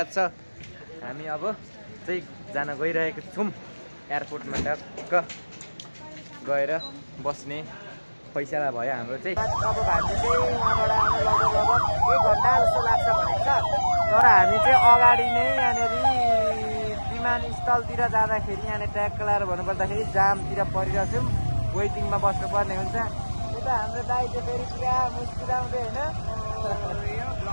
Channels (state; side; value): inverted; both; correlation -1.00